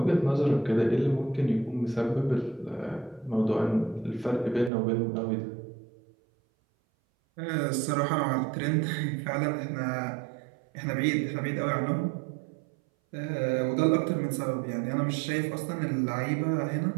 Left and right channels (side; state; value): left; drops out; at 4.7 s